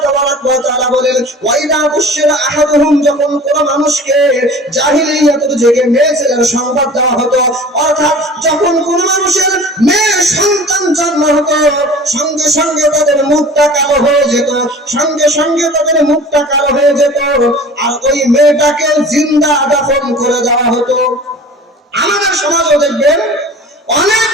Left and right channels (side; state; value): both; normal; correlation 0.42